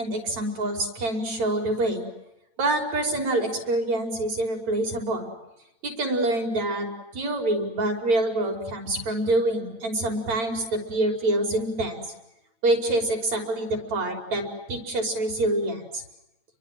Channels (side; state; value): left; late; 8.8 ms